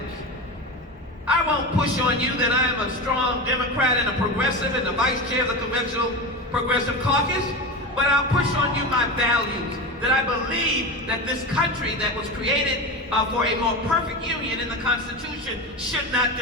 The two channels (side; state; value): both; normal; correlation 0.23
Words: I won't push on you that I am a strong Democrat and a progressive and the vice chair of the Conventional Progressive Caucus, but I'll push on you my values, that I believe that this country that was created for a more perfect union in the Constitution should not